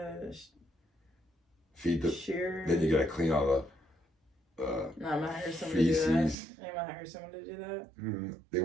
Feed the. shear. Then you gotta clean all the. No, I'm gonna hire someone to do that. feces. I'm gonna hire someone to do that. They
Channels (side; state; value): left; drops out; at 6.4 s